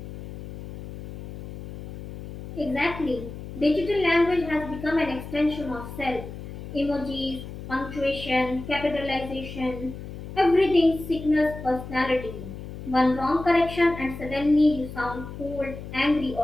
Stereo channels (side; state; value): left; noise; hum, 11 dB below the sound